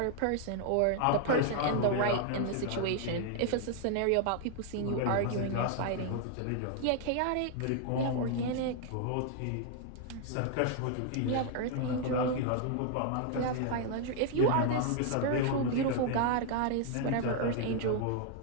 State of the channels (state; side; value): different; both; correlation 0.00